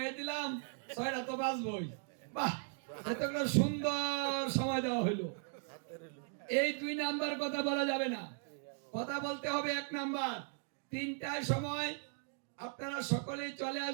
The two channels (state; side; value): silent; left; 53 dB below the other